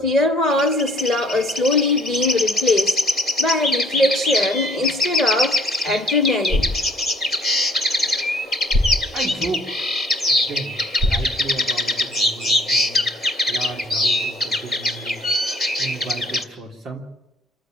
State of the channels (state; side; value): normal; both; correlation 0.59